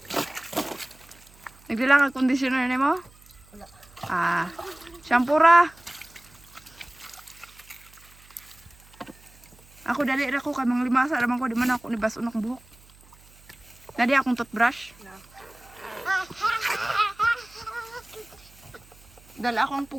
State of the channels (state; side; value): noise; right; hum, 26 dB below the sound